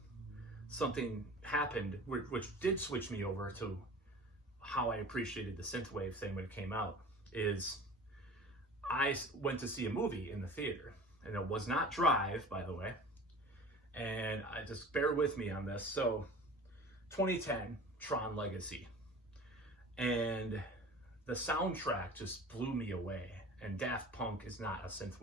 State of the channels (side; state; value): both; normal; correlation 0.40